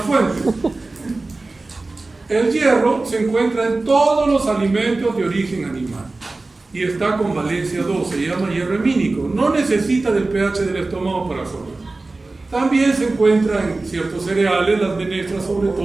fuentes. El hierro se encuentra en todos los alimentos de origen animal y está con valencia 2, se llama hierro hemínico, no necesita del pH del estómago para absorber. También se encuentra en ciertos cereales, las menestras sobre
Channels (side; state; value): left; quieter; 3.3 dB